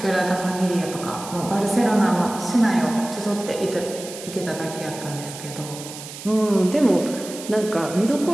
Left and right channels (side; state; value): right; noise; hiss, 12 dB below the sound